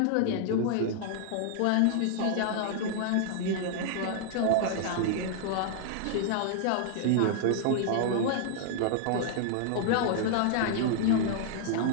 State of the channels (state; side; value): different; both; correlation -0.01